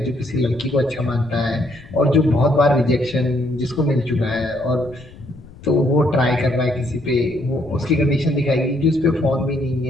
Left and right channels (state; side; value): noise; left; rumble, 20 dB below the sound